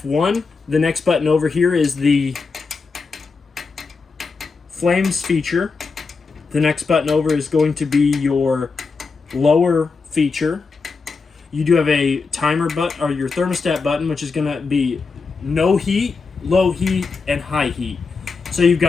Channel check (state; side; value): quieter; right; 4.6 dB